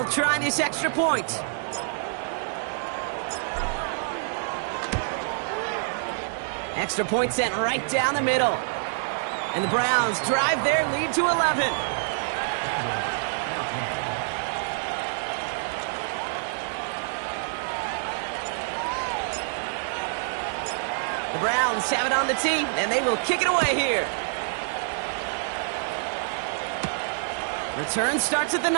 try this extra point. Extra point sent right down the middle. And the Browns drive their lead to 11. The Browns have it on the tee, and they will kick it away here. Return starts at the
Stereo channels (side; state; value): left; silent; 60 dB below the other